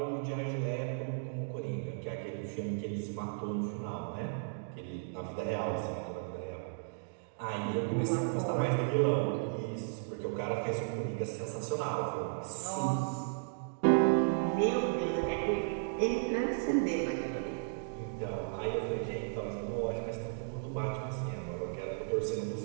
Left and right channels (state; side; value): silent; left; digital silence